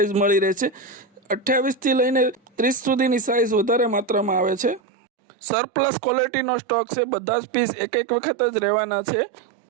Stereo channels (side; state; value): left; drops out; at 4.8 s